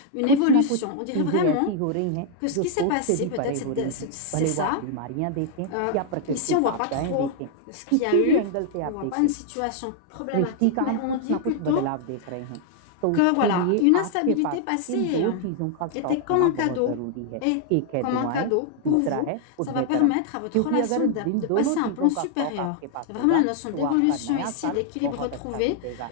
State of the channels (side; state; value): both; different; correlation 0.00